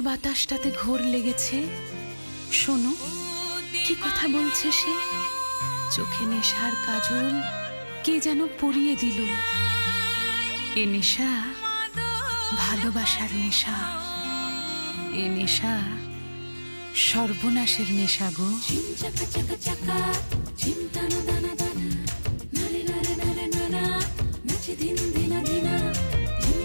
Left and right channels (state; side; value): inverted; both; correlation -1.00